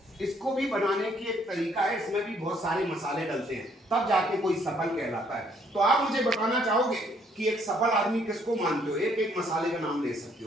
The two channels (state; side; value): normal; both; correlation 0.66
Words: इसको भी बनाने की एक तरीका है, इसमें भी बहुत सारे मसाले डलते हैं, तब जाके कोई सफल कहलाता है। तो आप मुझे बताना चाहोगे कि एक सफल आदमी किसको मानते हो? एक एक मसाले का नाम ले सकते